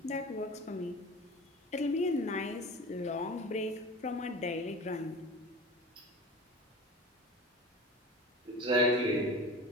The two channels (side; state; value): both; normal; correlation 0.35